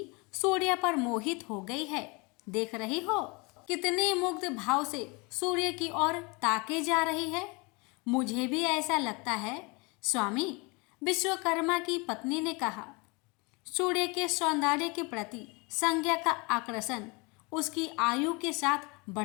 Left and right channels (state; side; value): quieter; right; 28.4 dB